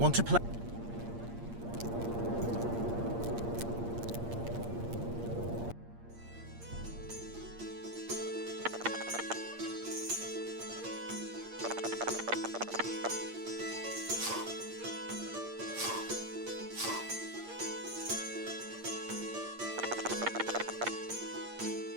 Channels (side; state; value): left; late; 8.6 ms